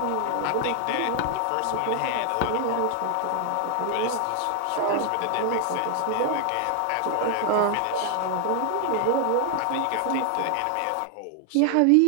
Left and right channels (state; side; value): different; both; correlation 0.00